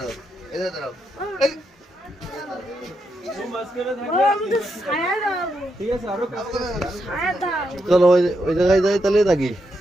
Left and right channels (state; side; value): normal; both; correlation 0.82